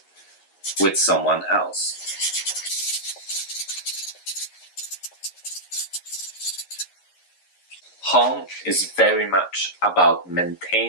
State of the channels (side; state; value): right; late; 11 ms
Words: with someone else. Home is very much about